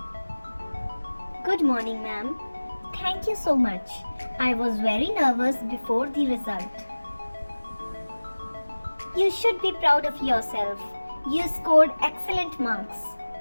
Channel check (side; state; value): both; inverted; correlation -1.00